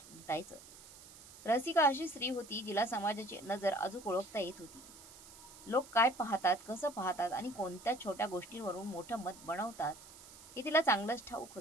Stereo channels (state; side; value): noise; right; hiss, 18 dB below the sound